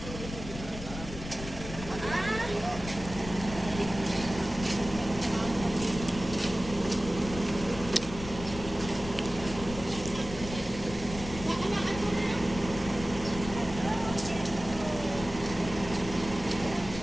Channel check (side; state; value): left; noise; rumble, 11 dB below the sound